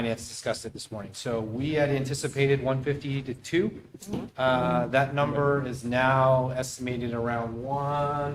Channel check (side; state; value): both; identical; correlation 1.00